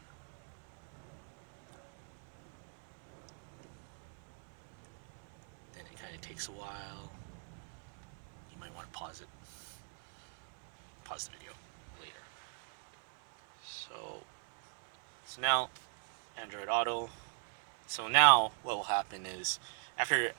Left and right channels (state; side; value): silent; left; 50 dB below the other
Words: then it kind of takes a while. You might want to pause the video later. So now Android Auto. So now what will happen is